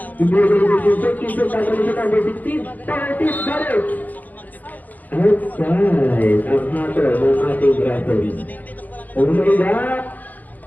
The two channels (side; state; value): right; late; 0.082 ms